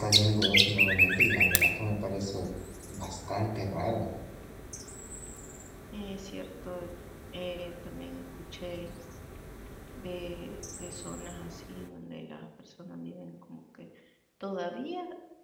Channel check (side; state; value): both; identical; correlation 1.00